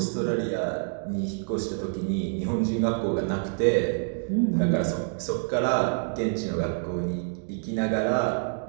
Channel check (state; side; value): silent; left; digital silence